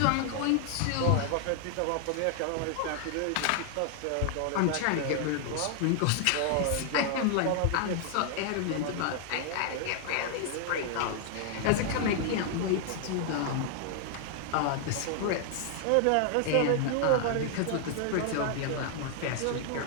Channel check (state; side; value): different; both; correlation 0.00